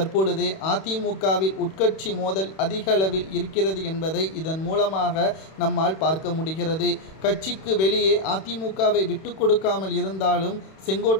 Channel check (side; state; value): right; late; 31 ms